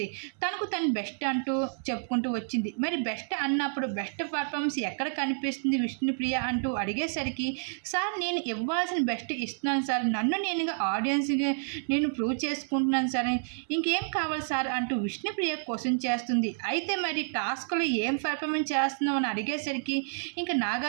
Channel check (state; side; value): silent; left; 58 dB below the other